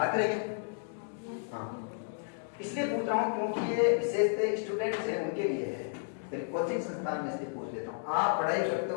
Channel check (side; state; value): right; silent; digital silence